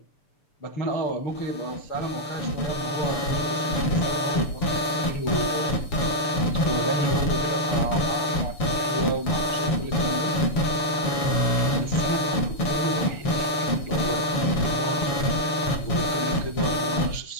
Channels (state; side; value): late; right; 7.1 ms